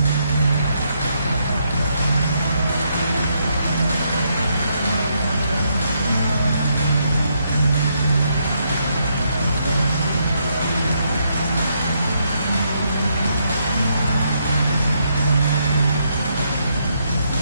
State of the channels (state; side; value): inverted; both; correlation -0.76